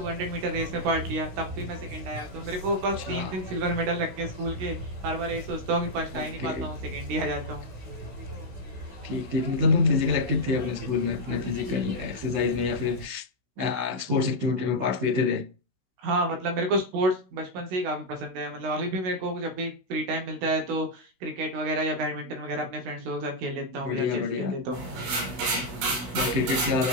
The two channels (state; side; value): late; left; 16 ms